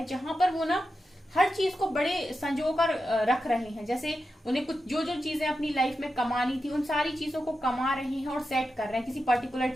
जहां पर वो ना हर चीज को बड़े संजो कर रख रहे हैं। जैसे उन्हें कुछ जो जो चीजें अपनी लाइफ में कमानी थी, उन सारी चीजों को कमा रहे हैं और सेट कर रहे हैं किसी पर्टिकुलर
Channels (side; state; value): both; normal; correlation 0.90